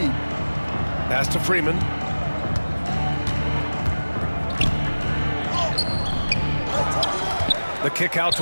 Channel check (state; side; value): inverted; both; correlation -1.00